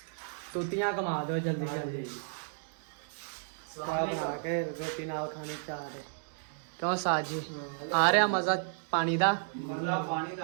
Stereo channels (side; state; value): left; silent; digital silence